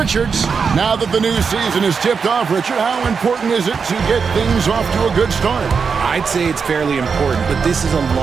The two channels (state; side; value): quieter; left; 5.7 dB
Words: Now that the new season is tipped off, Richard, how important is it to get things off to a good start? I'd say it's fairly important, but this is a